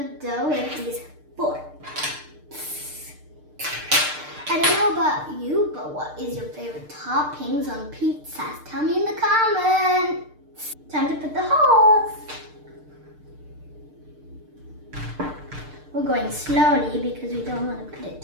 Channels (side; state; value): left; late; 6.6 ms